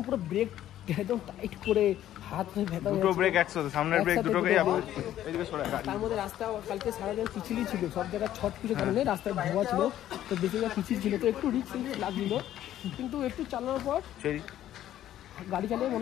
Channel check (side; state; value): right; quieter; 12.3 dB